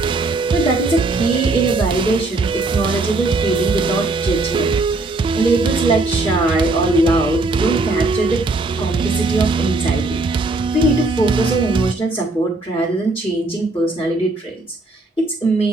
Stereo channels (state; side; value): quieter; left; 3.1 dB